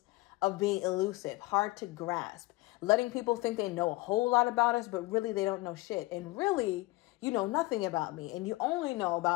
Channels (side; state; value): right; quieter; 21.4 dB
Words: of being elusive, hard to grasp, letting people think they know a whole lot about us, but really they don't know shit. And really, you know nothing about me. And you only know